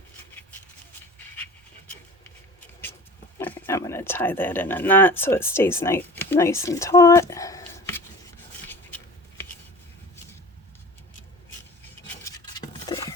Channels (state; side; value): normal; both; correlation 0.39